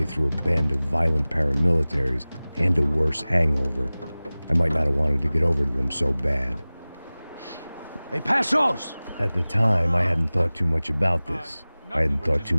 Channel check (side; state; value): both; inverted; correlation -0.99